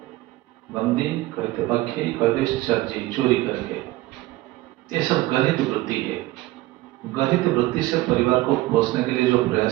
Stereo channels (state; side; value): quieter; left; 18.2 dB